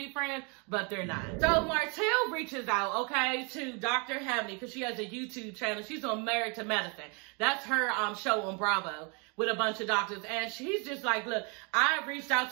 friends, but they're not. So Martell reaches out, okay, to Dr. Heavenly, because she has a YouTube channel. She's on Married to Medicine. That's her show on Bravo with a bunch of doctors. And she's just like, look, I reached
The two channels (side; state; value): left; quieter; 33.5 dB